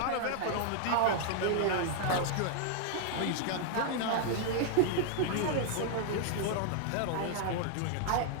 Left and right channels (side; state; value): both; different; correlation 0.00